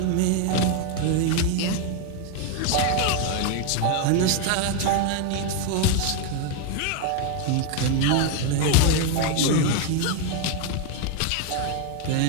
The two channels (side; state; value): both; different; correlation 0.01